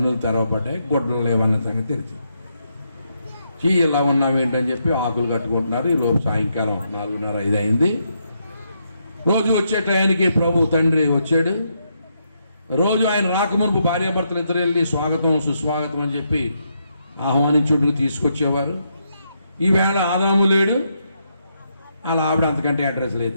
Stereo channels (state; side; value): inverted; both; correlation -0.79